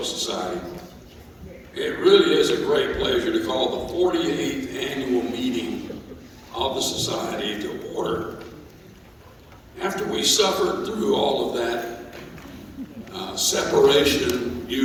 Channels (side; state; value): both; identical; correlation 1.00